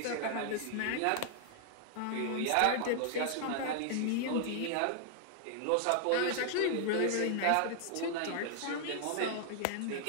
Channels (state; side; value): different; both; correlation -0.01